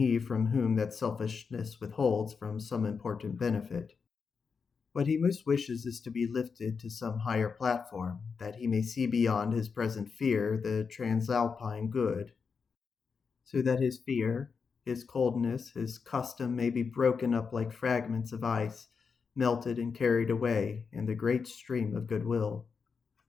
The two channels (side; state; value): right; quieter; 5.5 dB